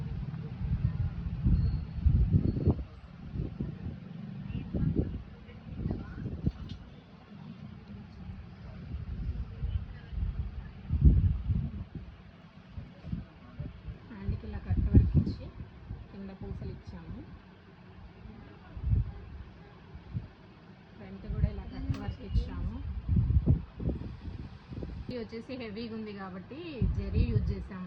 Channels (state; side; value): identical; both; correlation 1.00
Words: హ్యాండ్కి ఇలా కట్ వర్క్ ఇచ్చి కింద పూసలు ఇచ్చాము. ఫ్రంట్ కూడా ఇలా కట్ వర్క్ ఇచ్చాము. ఇది వచ్చేసి హెవీగా ఉంది కాబట్టి జరీ యూజ్ చేసాము.